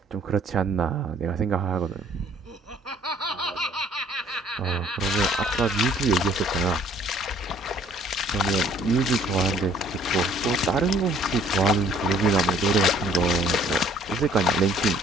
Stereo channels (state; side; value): normal; both; correlation 0.58